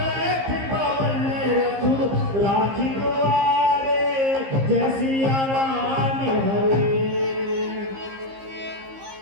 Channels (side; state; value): left; late; 15 ms